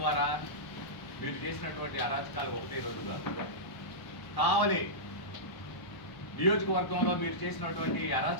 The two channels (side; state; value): right; late; 1.1 ms